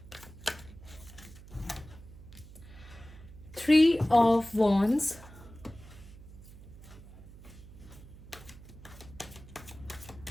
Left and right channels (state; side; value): noise; right; hum, 18 dB below the sound